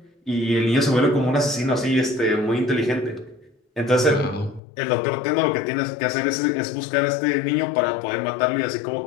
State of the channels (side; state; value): right; drops out; at 4.6 s